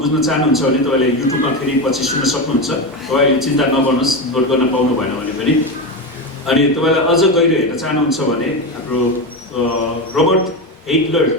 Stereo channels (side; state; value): both; normal; correlation 0.16